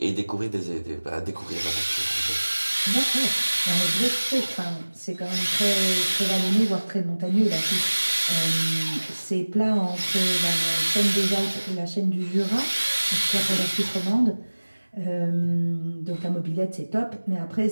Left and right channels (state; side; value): inverted; both; correlation -1.00